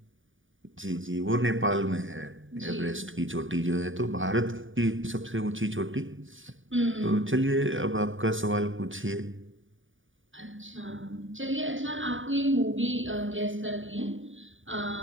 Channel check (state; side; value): late; left; 0.57 ms